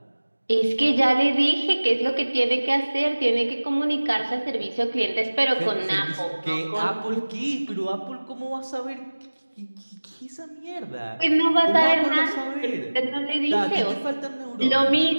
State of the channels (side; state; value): both; inverted; correlation -1.00